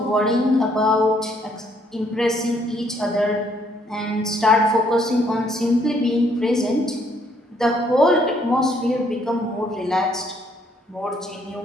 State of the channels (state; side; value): normal; both; correlation 0.68